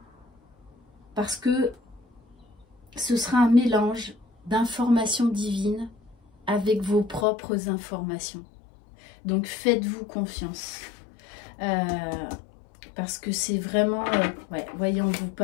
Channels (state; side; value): drops out; right; at 7.2 s